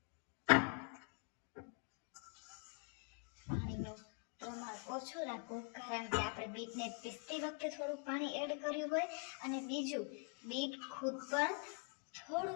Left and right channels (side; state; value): right; quieter; 36.1 dB